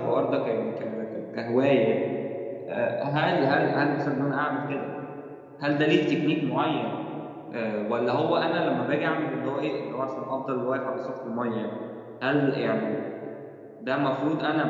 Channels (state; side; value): identical; both; correlation 1.00